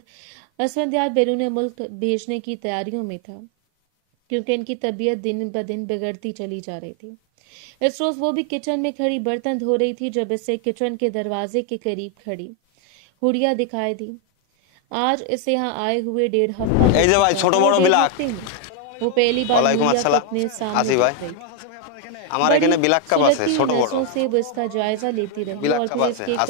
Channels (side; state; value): both; different; correlation 0.00